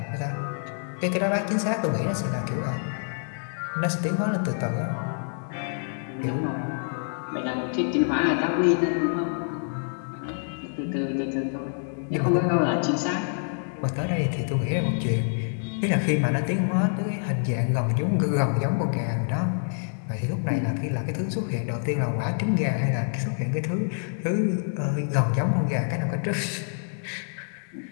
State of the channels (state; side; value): silent; right; digital silence